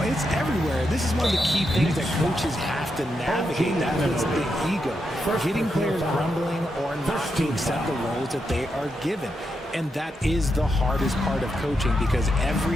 it's everywhere. This is one of the key things that coaches have to navigate. That puts the ego. Getting players grumbling or not to accept the roles that they are given. And that is the hardest part of coaching because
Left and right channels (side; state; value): both; normal; correlation 0.84